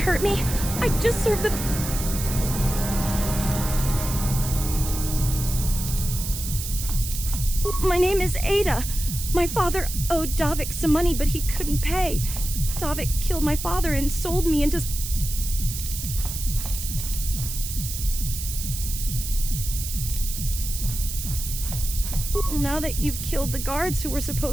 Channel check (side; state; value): right; noise; hiss, 6 dB below the sound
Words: me. I just served the... My name is Ada. My father owed Davik some money, but he couldn't pay. Davik killed my father and sold me into... Now that you've killed the guards who were